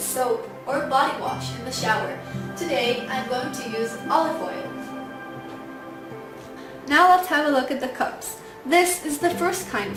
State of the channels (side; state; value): both; identical; correlation 1.00